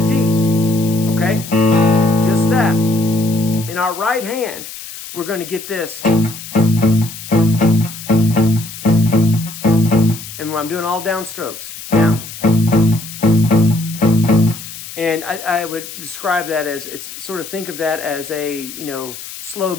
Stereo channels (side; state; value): left; noise; hiss, 12 dB below the sound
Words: D, okay? Just that. In our right hand, we're going to get this. And I'm doing all down strokes. Down. And I would describe that as, it's sort of, think of that as a, you know, slow